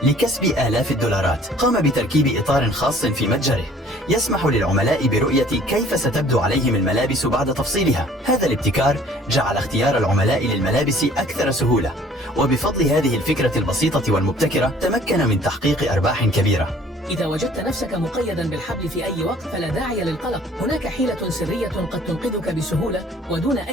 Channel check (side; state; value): both; normal; correlation 0.54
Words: لكسب آلاف الدولارات. قام بتركيب إطار خاص في متجره يسمح للعملاء برؤية كيف ستبدو عليهم الملابس بعد تفصيلها. هذا الابتكار جعل اختيار العملاء للملابس أكثر سهولة، وبفضل هذه الفكرة البسيطة والمبتكرة تمكن من تحقيق أرباح كبيرة. إذا وجدت نفسك مقيدا بالحبل في أي وقت فلا داعي للقلق. هناك حيلة سرية قد تنقذك بسهولة ودون